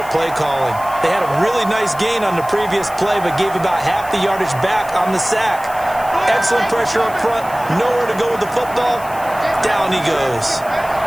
play calling. They had a really nice gain on the previous play, but gave about half the yardage back on the sack. Excellent pressure up front. Nowhere to go with the football. Down he goes.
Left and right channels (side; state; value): left; noise; hiss, 18 dB below the sound